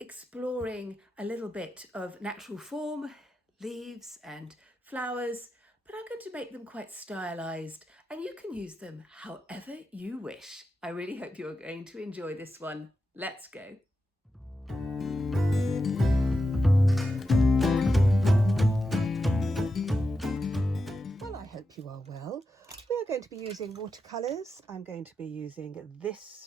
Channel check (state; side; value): normal; both; correlation 0.89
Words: a little bit of natural form, leaves and flowers, but I'm going to make them quite stylized and you can use them however you wish. I really hope you're going to enjoy this one. Let's go. Well, I hope you are well. We are going to be using watercolours. I'm going to be using